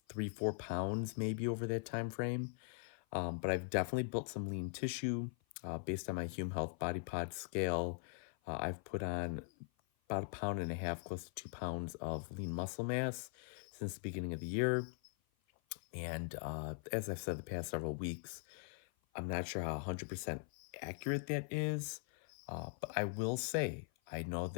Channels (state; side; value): silent; right; 50 dB below the other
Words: 3, 4 pounds maybe over that time frame. But I've definitely built some lean tissue based on my Hume Health Body Pod scale. I've put on about 1.5 pounds, close to 2 pounds of lean muscle mass since the beginning of the year. And as I've said the past several weeks, I'm not sure how 100% accurate that is, but I will say I know